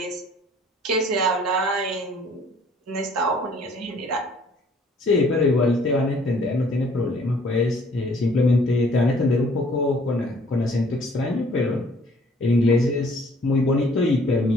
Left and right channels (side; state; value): both; normal; correlation 0.58